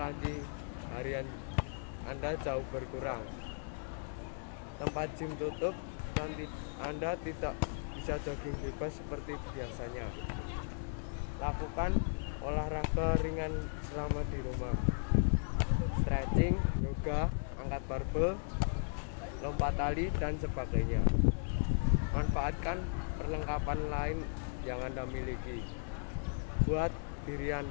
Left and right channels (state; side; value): silent; right; digital silence